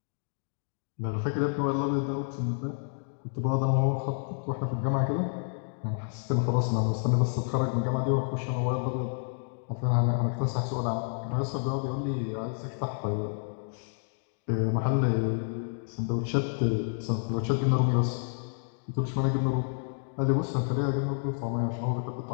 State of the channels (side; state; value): right; silent; digital silence